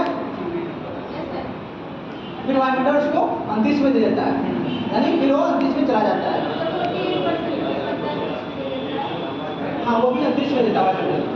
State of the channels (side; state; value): both; identical; correlation 1.00